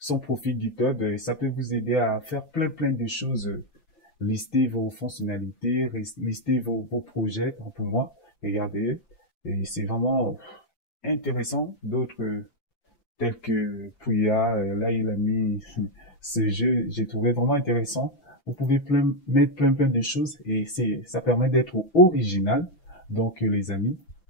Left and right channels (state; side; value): late; right; 5.9 ms